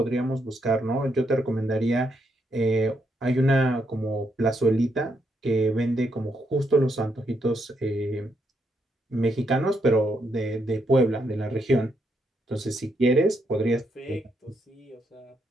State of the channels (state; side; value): normal; both; correlation 0.78